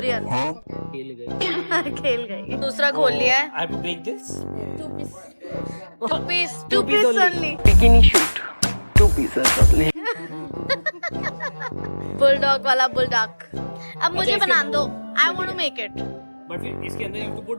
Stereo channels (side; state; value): both; inverted; correlation -1.00